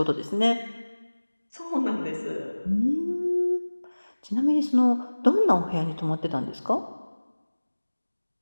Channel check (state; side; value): inverted; both; correlation -1.00